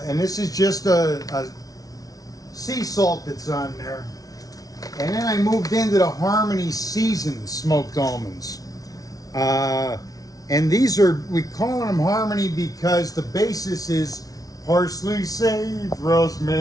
this is just a sea salt that's on there. And then I moved into the Harmony Seasoned Smoked Almonds. And these are, we call them Harmony because the basis is parsley, sage,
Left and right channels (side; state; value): right; late; 0.18 ms